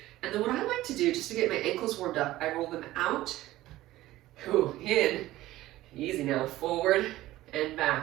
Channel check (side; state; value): left; quieter; 16.1 dB